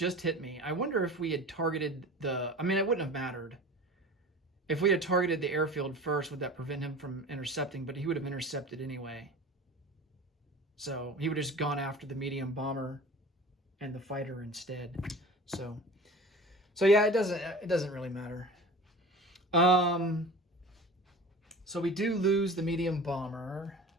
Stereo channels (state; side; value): normal; both; correlation 0.38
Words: me. I wonder if we had targeted the, I mean, it wouldn't have mattered. If we had targeted the airfield first, would that prevent him from intercepting? But he would have intercepted anyway. So he would have just gone after the medium bomber and the fighter instead. So yeah, it doesn't really matter. So we do lose the medium bomber.